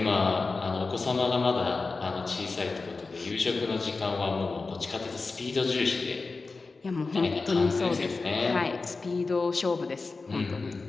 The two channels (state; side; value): quieter; right; 4.0 dB